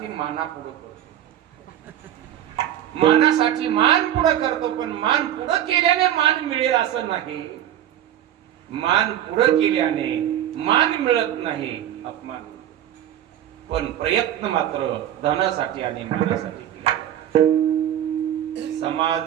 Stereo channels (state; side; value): quieter; left; 11.3 dB